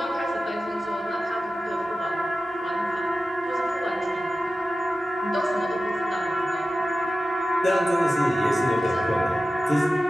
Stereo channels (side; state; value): both; normal; correlation 0.94